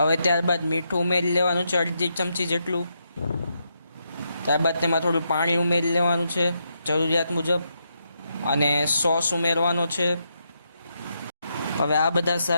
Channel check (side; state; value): both; inverted; correlation -0.81